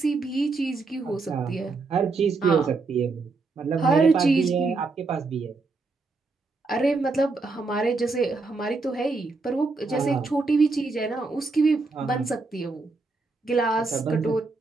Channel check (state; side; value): quieter; left; 3.9 dB